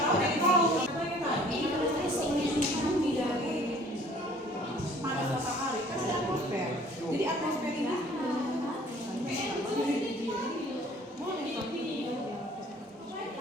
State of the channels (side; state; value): both; normal; correlation 0.53